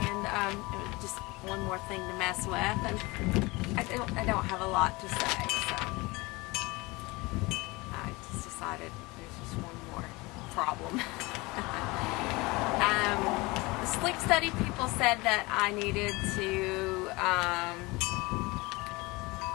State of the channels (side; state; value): right; quieter; 23.7 dB